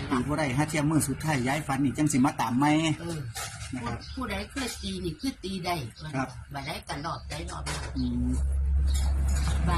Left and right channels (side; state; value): both; identical; correlation 1.00